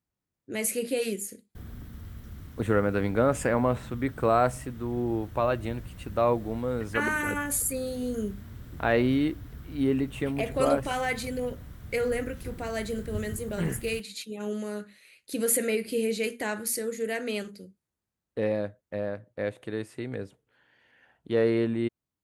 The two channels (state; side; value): identical; both; correlation 1.00